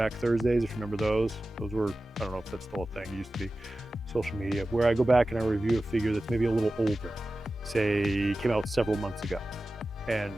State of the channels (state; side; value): normal; both; correlation 0.95